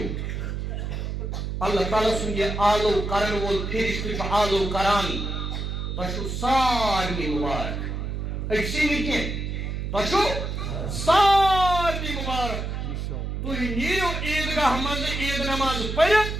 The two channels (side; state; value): right; noise; hum, 4 dB below the sound